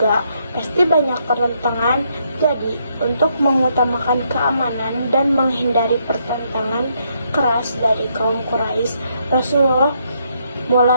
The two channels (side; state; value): both; inverted; correlation -0.74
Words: pasti banyak pertentangan. Jadi, untuk mengutamakan keamanan dan menghindari pertentangan keras dari kaum Quraisy, Rasulullah